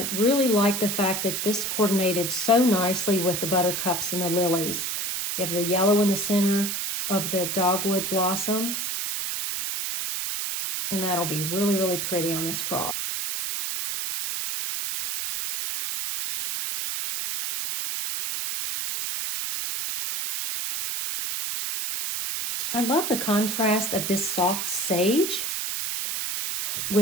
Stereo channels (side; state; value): right; noise; hiss, 2 dB below the sound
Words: really like the fact that this coordinated so nicely with the buttercups and the lilies. You have the yellow in the center of the dogwood blossoms, and that'll be really, really pretty on this cross. I love the contrast of this soft sage